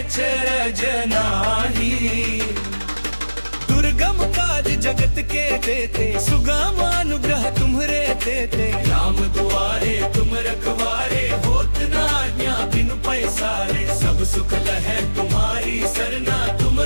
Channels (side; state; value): both; inverted; correlation -1.00